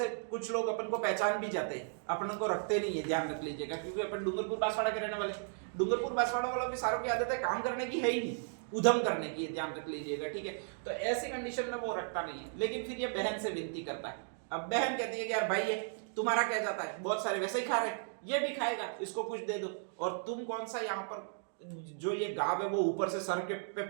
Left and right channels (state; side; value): silent; left; digital silence